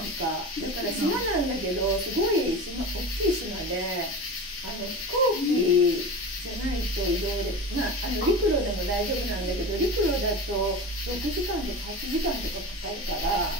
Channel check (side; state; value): both; normal; correlation 0.29